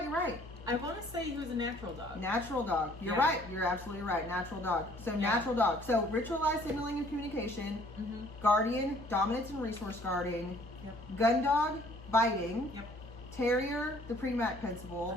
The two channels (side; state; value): both; normal; correlation 0.58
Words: I want to say he was a natural dog. Natural dog. You're right. You're absolutely right. Natural dog. So natural dog. So ritualized signaling and communication. Mm-hmm. Guardian, dominance and resource guarding. Yep. Gun dog, biting. Yep. Terrier, the Premack principle.